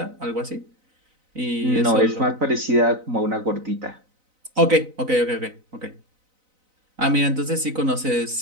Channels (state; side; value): late; left; 4.0 ms